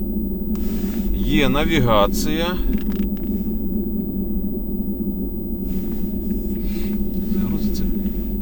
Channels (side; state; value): both; identical; correlation 1.00